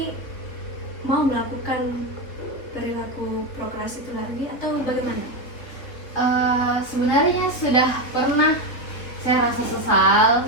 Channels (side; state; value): right; late; 3.5 ms